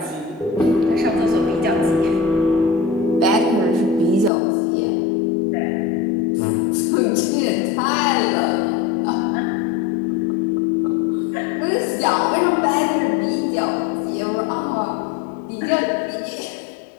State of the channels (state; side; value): drops out; right; at 4.3 s